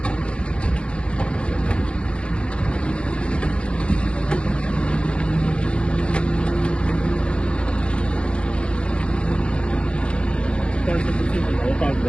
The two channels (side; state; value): right; late; 0.058 ms